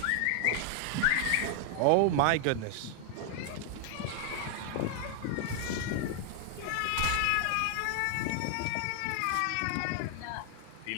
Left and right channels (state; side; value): different; both; correlation 0.00